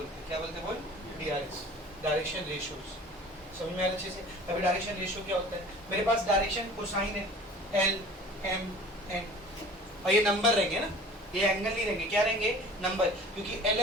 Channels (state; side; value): normal; both; correlation 0.45